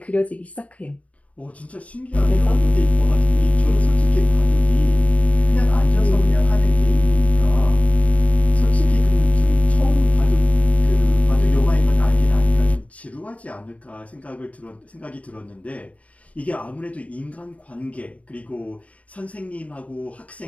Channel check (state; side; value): late; right; 0.067 ms